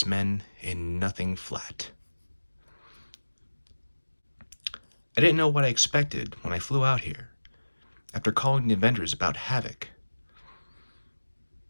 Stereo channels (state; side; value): inverted; both; correlation -1.00